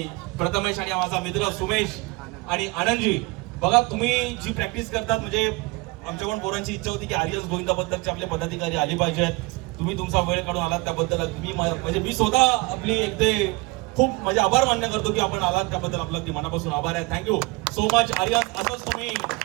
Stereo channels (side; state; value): left; quieter; 25.0 dB